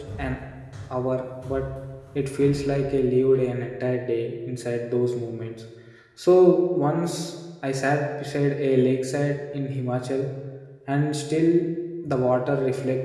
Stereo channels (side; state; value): both; identical; correlation 1.00